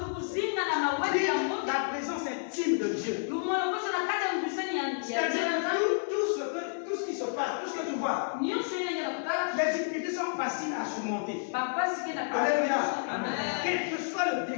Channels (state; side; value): silent; right; digital silence